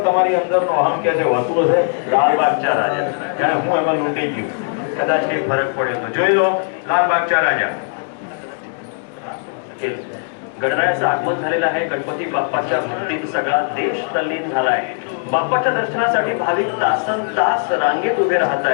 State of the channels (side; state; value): right; silent; 64 dB below the other